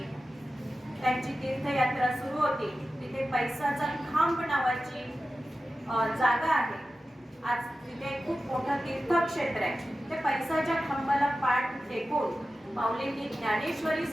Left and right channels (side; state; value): both; normal; correlation 0.93